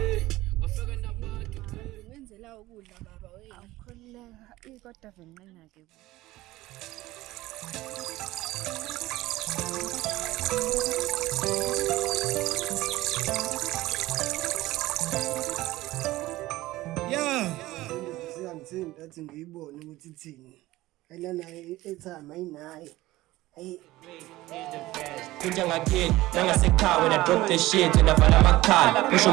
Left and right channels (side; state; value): left; quieter; 17.6 dB